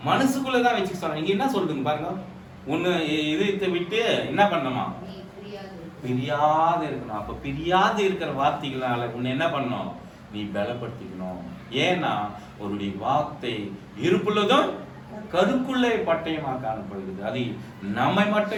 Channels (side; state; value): both; identical; correlation 1.00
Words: மனசுக்குள்ளதான் வச்சுக்க சொல்றாங்க. நீங்க என்ன சொல்றீங்க பாருங்க? ஒண்ணு இதயத்தை விட்டு என்ன பண்ணணுமா? பிரியாது இருக்கணும். அப்ப பிரியாது இருக்கிற வார்த்தைகளால உன்னை என்ன பண்ணணும்? நீ பலப்படுத்திக்கணும். ஏன்னா அவருடைய வார்த்தை இருப்புள்ளதும் கருக்குள்ளே பட்டயமா காணப்படுகிறது. அது நம்மை